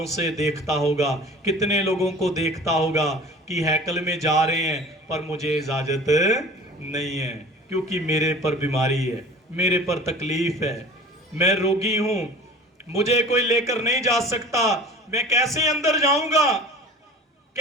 से देखता होगा, कितने लोगों को देखता होगा कि हैकल में जा रहे हैं, पर मुझे इजाजत नहीं है क्योंकि मेरे पर बीमारी है, मेरे पर तकलीफ है, मैं रोगी हूं, मुझे कोई लेकर नहीं जा सकता, मैं कैसे अंदर जाऊंगा,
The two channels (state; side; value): normal; both; correlation 0.41